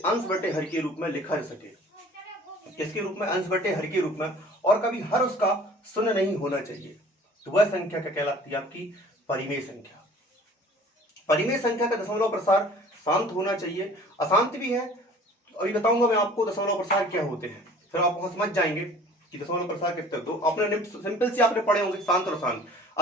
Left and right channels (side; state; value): both; normal; correlation 0.48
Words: अंश बटे हर के रूप में लिखा जा सके। किसके रूप में? अंश बटे हर के रूप में, और कभी हर उसका शून्य नहीं होना चाहिए, तो वह संख्या क्या कहलाती है? आपकी परिमेय संख्या। परिमेय संख्या का दशमलव प्रसार शांत होना चाहिए, अशांत भी है, अभी बताऊंगा मैं आपको दशमलव प्रसार क्या होते हैं, फिर आप वहां समझ जाएंगे कि दशमलव प्रसार कितने। तो आपने सिंपल से आपने पढ़े होंगे शांत और अशांत।